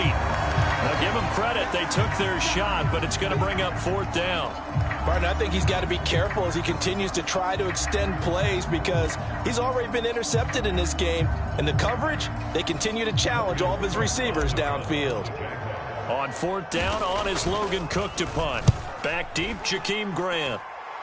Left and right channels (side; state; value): both; identical; correlation 1.00